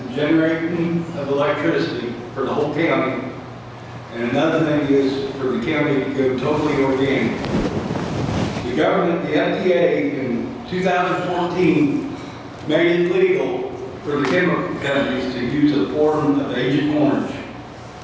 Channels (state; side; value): identical; both; correlation 1.00